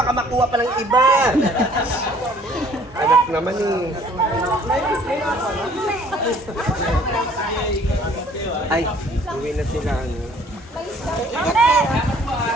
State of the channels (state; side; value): normal; both; correlation 0.56